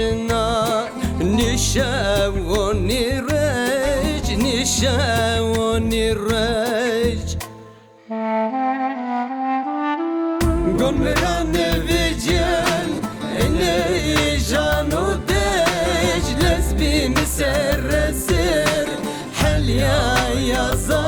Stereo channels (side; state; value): both; identical; correlation 1.00